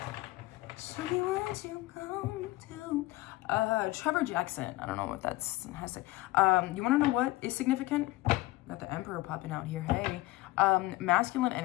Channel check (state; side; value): quieter; right; 18.8 dB